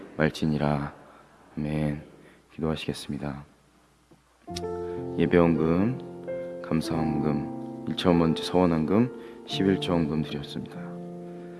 말지니라. 아멘. 기도하시겠습니다. 예배원금, 감사원금, 1차원번째 서원원금, 11조원금 드렸습니다.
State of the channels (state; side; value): identical; both; correlation 1.00